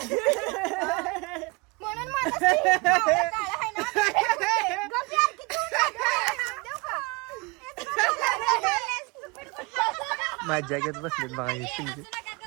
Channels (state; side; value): quieter; left; 26.9 dB